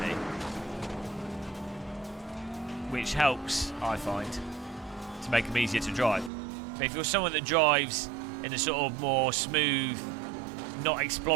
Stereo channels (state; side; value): drops out; left; at 6.3 s